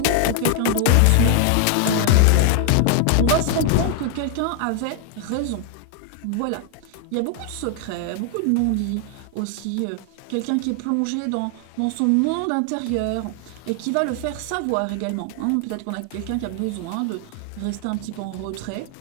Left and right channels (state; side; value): different; both; correlation 0.00